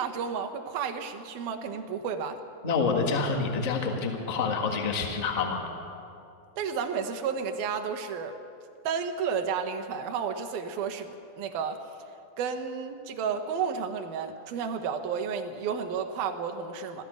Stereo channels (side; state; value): left; late; 12 ms